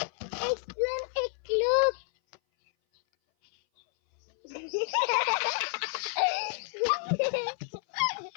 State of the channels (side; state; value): right; silent; 57 dB below the other